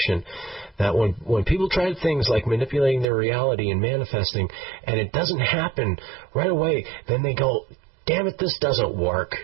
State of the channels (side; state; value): left; drops out; at 3.1 s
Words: that when people try things like manipulating their reality and manifesting, and it doesn't happen right away, then they go, damn it, this doesn't work.